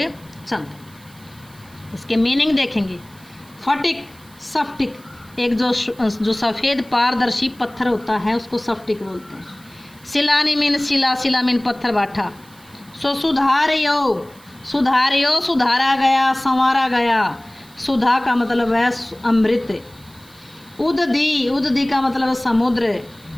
चंद। इसके मीनिंग देखेंगे। फटिक सफ्टिक, एक जो सफ़ेद पारदर्शी पत्थर होता है उसको सफ्टिक बोलते हैं। सिलानी मीन शिला, शिला मीन पत्थर बाठा। सो सुधारियो, सुधारियो सुधारा गया, संवारा गया। सुधा का मतलब है अमृत। उददी, उददी का मतलब है समुद्र।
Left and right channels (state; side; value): noise; right; hiss, 26 dB below the sound